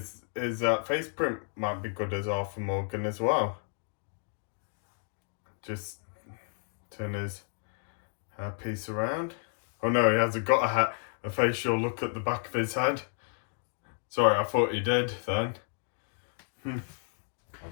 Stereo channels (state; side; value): silent; right; 57 dB below the other